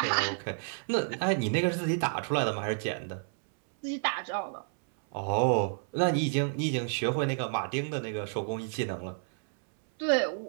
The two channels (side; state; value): left; silent; 58 dB below the other